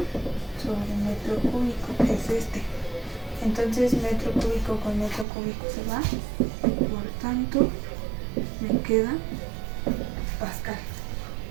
sobre metro cúbico, que es este. Entonces metro cúbico con metro cúbico se va, por tanto me queda pascal.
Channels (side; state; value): left; drops out; at 5.2 s